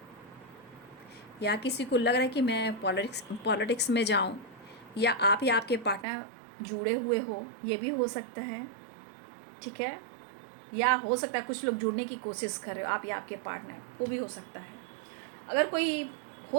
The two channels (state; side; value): drops out; left; at 6.1 s